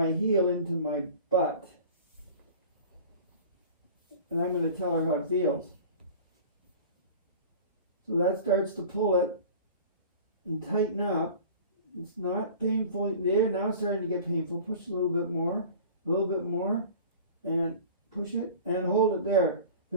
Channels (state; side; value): inverted; both; correlation -0.40